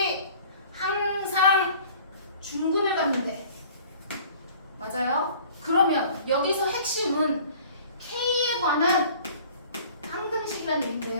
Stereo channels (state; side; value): inverted; both; correlation -0.50